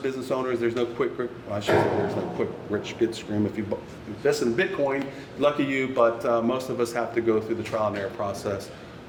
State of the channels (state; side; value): identical; both; correlation 1.00